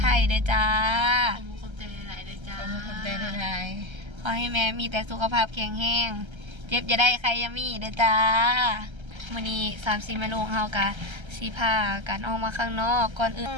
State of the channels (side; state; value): left; late; 1.3 ms